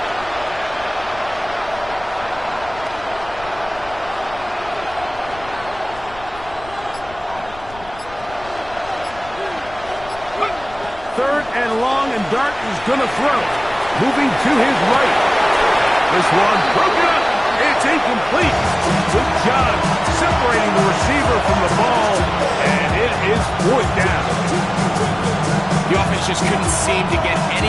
Third and long, and Dart is going to throw. Moving to his right. This one broken up. It's incomplete. Good job separating the receiver from the ball, and it is 4th down. The offense just couldn't seem to get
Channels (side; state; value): left; noise; rumble, 19 dB below the sound